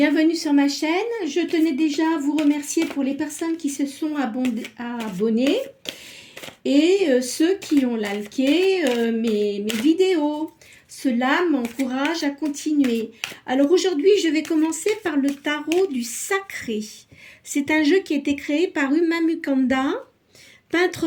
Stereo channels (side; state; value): both; identical; correlation 1.00